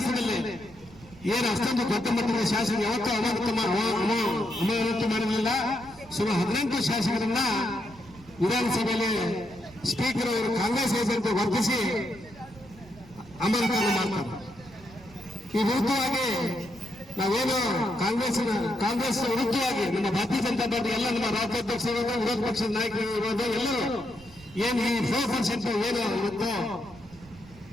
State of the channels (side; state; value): right; noise; rumble, 21 dB below the sound